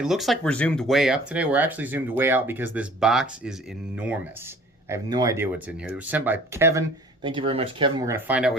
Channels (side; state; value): both; normal; correlation 0.49